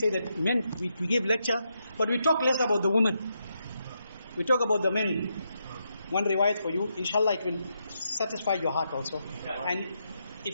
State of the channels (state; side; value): inverted; both; correlation -0.82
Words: that men, we give lecture, but we talk less about the women. We talk about the men. One riwayat for you, inshallah it will satisfy your heart also. And